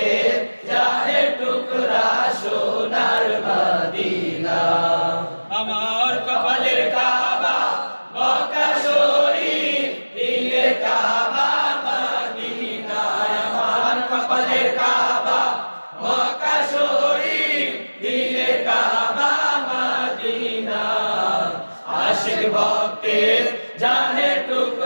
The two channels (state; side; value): inverted; both; correlation -1.00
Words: জানের টুকরা সোনার মদিনা। আমার কপালের কাবা মক্কা শরীফ, দিলের কাবা মদিনা। আমার কপালের কাবা মক্কা শরীফ, দিলের কাবা মদিনা। আশিক ভক্তের জানের